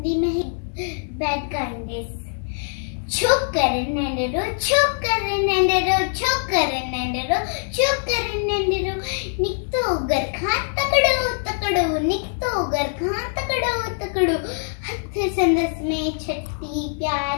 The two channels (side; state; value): right; silent; 64 dB below the other